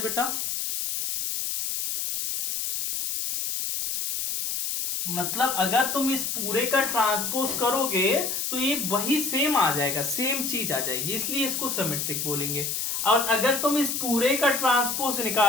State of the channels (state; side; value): noise; left; hiss, 2 dB below the sound